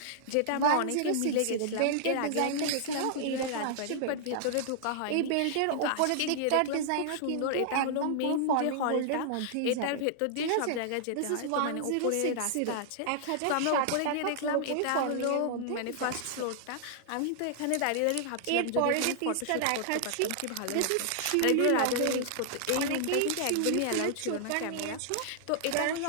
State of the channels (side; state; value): both; different; correlation -0.01